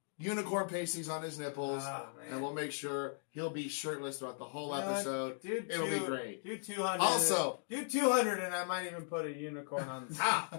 unicorn pasties on his nipples. And we'll make sure he'll be shirtless throughout the whole episode. It'll be great. Do 200. Also, do 200 and I might even put a unicorn on the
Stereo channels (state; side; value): silent; right; digital silence